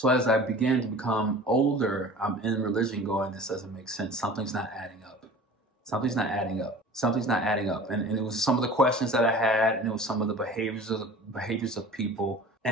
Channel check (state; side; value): normal; both; correlation 0.42